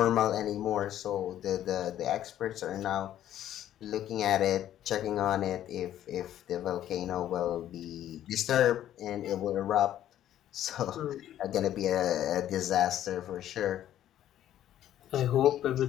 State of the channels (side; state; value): right; quieter; 11.8 dB